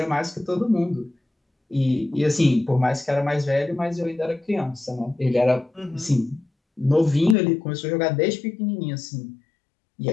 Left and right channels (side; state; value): right; drops out; at 7.4 s